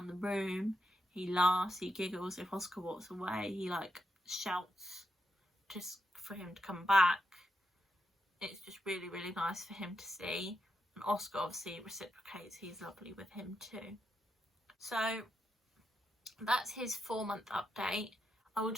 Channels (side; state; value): both; normal; correlation 0.84